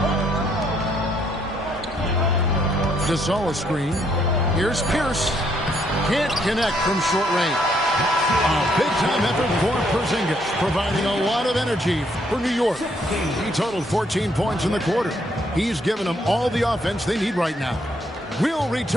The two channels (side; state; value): both; normal; correlation 0.71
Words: Gasol screen. Here's Pierce. Can't connect from short range. A big-time effort for Porzingis, providing a lot of energy for New York. He totaled 14 points in the quarter. He's given them all the offense they need right now. We'll